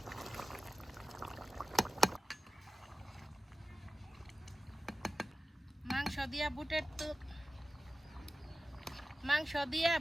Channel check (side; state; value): both; normal; correlation 0.95